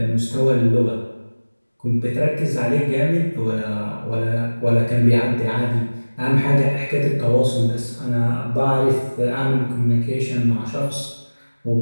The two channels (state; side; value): inverted; both; correlation -1.00